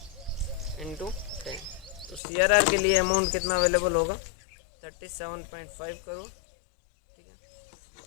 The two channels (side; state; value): right; drops out; at 2.2 s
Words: इंटू 10। तो सीआरआर के लिए अमाउंट कितना अवेलेबल होगा, 37.5 करोड़, ठीक